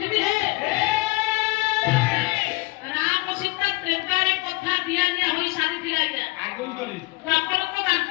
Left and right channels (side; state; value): right; quieter; 23.7 dB